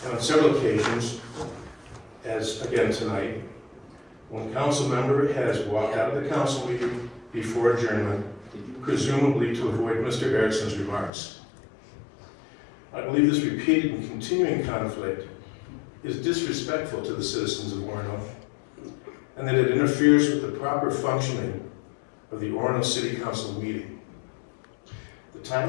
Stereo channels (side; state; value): right; drops out; at 11.1 s